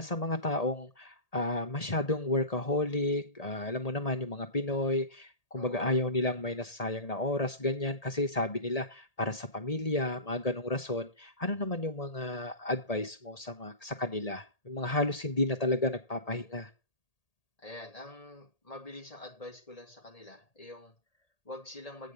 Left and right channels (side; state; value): right; late; 1.8 ms